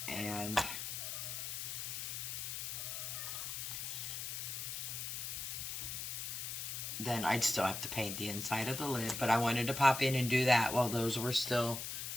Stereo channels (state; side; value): noise; left; hiss, 4 dB below the sound